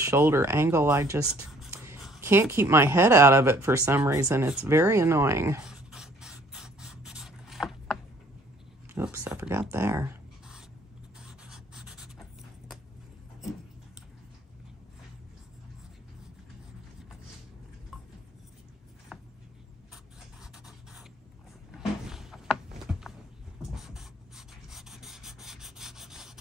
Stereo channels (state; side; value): normal; both; correlation 0.58